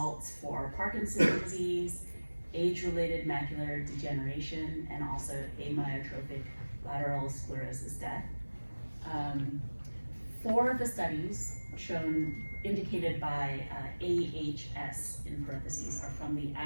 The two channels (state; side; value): inverted; both; correlation -1.00